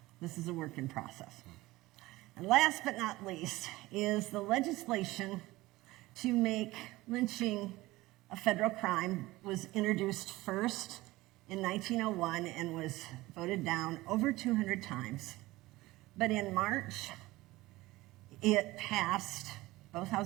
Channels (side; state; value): left; quieter; 19.1 dB